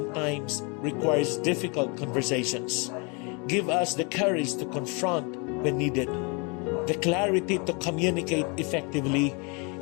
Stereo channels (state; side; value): quieter; right; 32.5 dB